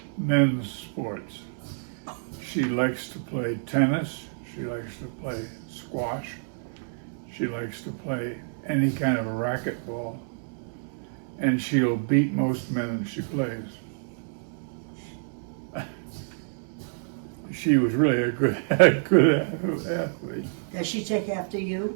men's sports. She likes to play tennis. She likes to play squash. She likes to play any kind of a racquetball. And she'll beat most men that she plays. She was really a good athlete. Does she take after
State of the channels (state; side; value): silent; left; 59 dB below the other